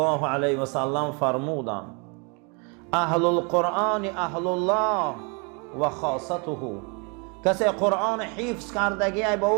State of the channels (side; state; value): left; quieter; 33.8 dB